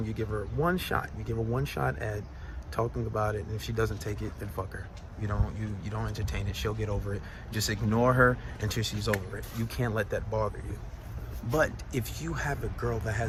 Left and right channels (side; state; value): both; identical; correlation 1.00